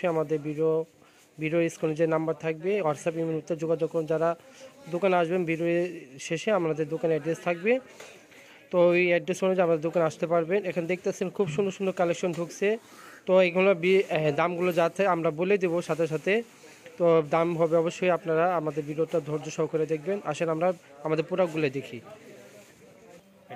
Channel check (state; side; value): identical; both; correlation 1.00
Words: আমাদের ভিডিও স্ক্রিনে যে নাম্বার থাকবে হোয়াটসঅ্যাপ ইমেলতে যোগাযোগ করুন। যারা দোকানে আসবেন ভিডিও শেষে আমাদের দোকানের অ্যাড্রেস থাকবে, তো ওই অ্যাড্রেস অনুযায়ী আমাদের দোকানে আসতে পারবেন। এখানে দেখতেছেন খুব সুন্দর সুন্দর কালেকশন ঢুকছে। তো এইগুলো দামগুলো যাতে আমরা বলে দেবো সাথে সাথে, তো দাম হবে অবশ্যই আপনারা আমাদের ভিডিওটা ধৈর্য সহকারে দেখবেন। আসেন আমরা আমাদের প্রোডাক্টগুলো দেখি।